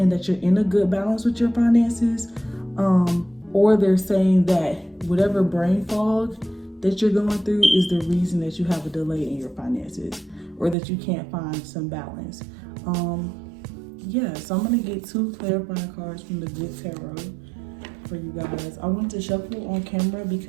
that you're in a good balance with your finances, or they're saying that whatever brain fog that you're going through is the reason that you have a delay in your finances, or that you can't find some balance. Yeah, so I'm gonna get 2 clarifying cards from the Good Tarot for you guys. I want to shuffle on camera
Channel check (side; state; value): left; drops out; at 10.8 s